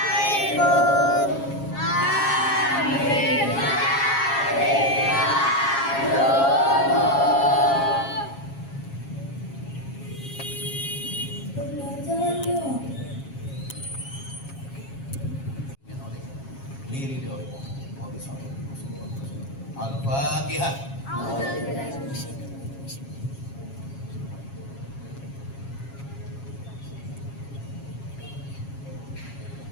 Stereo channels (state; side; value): late; right; 7.3 ms